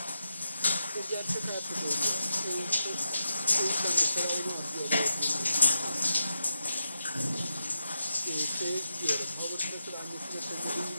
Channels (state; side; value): inverted; both; correlation -0.85